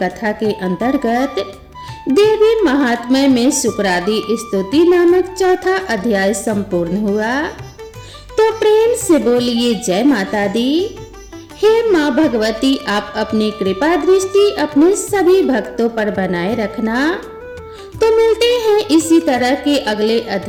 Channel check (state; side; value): identical; both; correlation 1.00